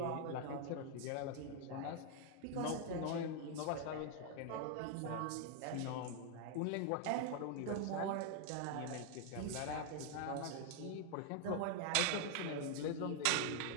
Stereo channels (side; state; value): both; different; correlation 0.00